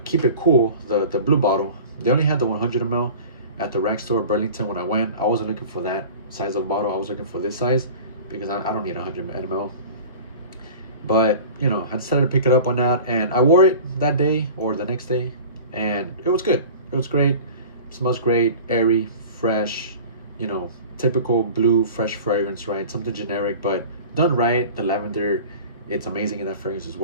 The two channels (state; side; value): inverted; both; correlation -0.38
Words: Keep It Cool, the blue bottle. They only had the 100 ml at the rack store Burlington when I went. I wasn't looking for that size of bottle. I was looking for this size because I don't need 100 ml. But you know, I decided to pick it up on that, and I wore it that day or the next day, and it was good. It was great. It smells great, airy, fresh, you know, typical blue fresh fragrance, right? Something generic, but done right. The lavender, it's amazing in that fragrance as